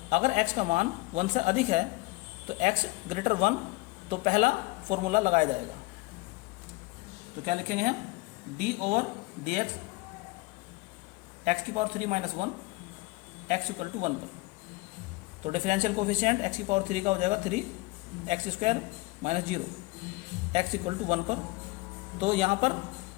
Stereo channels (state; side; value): quieter; right; 23.5 dB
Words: अगर x का मान 1 से अधिक है तो x ग्रेटर 1, तो पहला फॉर्मूला लगाया जाएगा। तो क्या लिखेंगे हम? d ओवर dx x की power 3 minus 1 x equal to 1 पर। तो डिफरेंशियल कोफिशिएंट x की पावर 3 का हो जाएगा 3x square minus 0 x equal to 1 पर। तो यहाँ पर